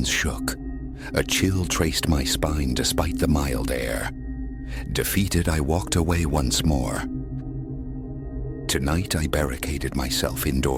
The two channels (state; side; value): identical; both; correlation 1.00